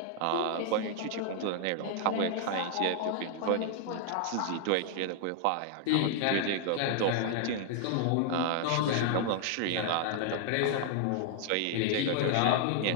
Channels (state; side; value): different; both; correlation 0.00